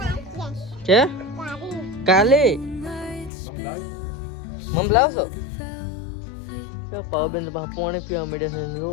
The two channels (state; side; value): drops out; right; at 3.3 s